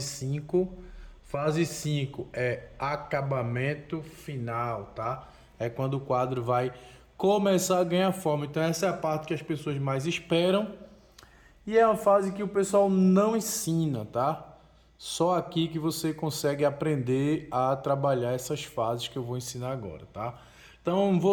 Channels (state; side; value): identical; both; correlation 1.00